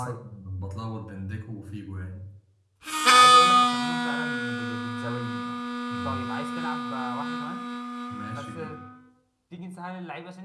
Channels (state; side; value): identical; both; correlation 1.00